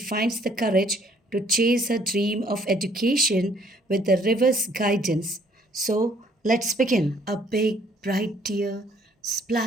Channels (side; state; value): both; normal; correlation 0.62